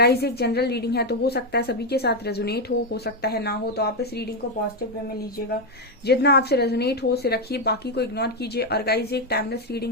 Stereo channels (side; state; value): both; normal; correlation 0.05